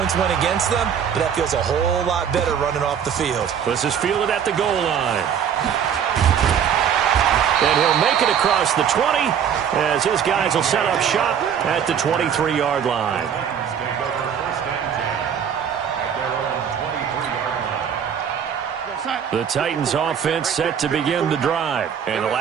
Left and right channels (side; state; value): left; quieter; 8.2 dB